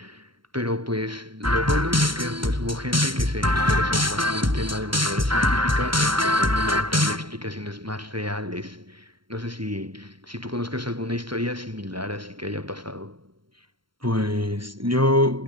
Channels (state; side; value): late; left; 0.73 ms